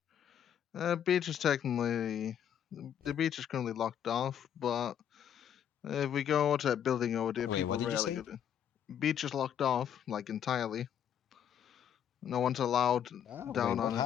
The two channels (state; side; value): quieter; right; 9.3 dB